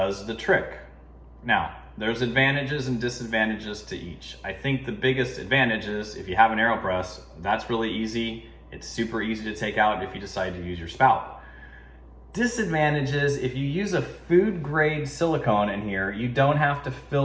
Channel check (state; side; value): identical; both; correlation 1.00